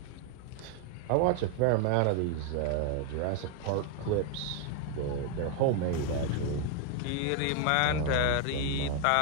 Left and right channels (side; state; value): both; different; correlation 0.00